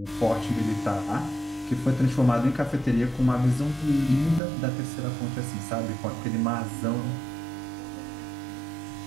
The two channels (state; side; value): drops out; left; at 4.4 s